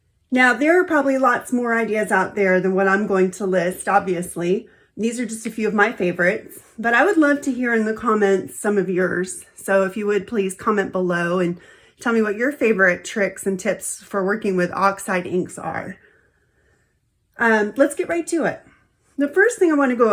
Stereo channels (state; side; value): identical; both; correlation 1.00